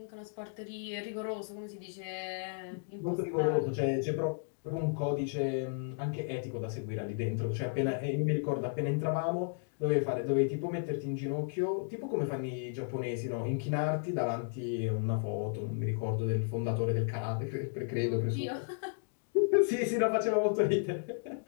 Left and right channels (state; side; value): silent; right; digital silence